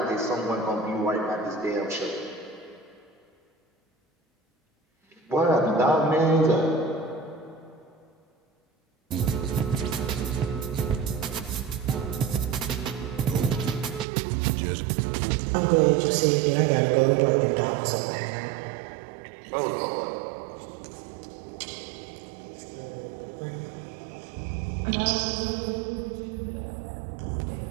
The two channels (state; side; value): drops out; left; at 14.1 s